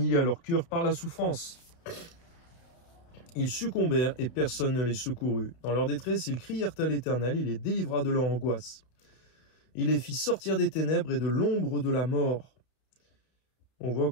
leur cœur par la souffrance. Ils succombèrent et personne ne les secourut. Dans leur détresse, ils crièrent à l'Éternel, il les délivra de leur angoisse. Il les fit sortir des ténèbres et de l'ombre de la mort. On voit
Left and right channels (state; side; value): late; right; 32 ms